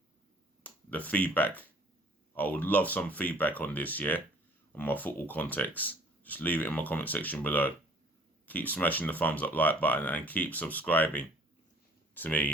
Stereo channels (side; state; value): both; normal; correlation 0.54